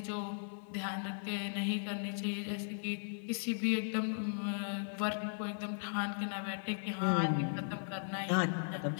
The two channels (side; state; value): right; silent; digital silence